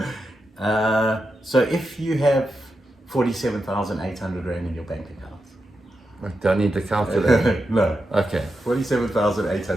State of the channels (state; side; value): normal; both; correlation 0.88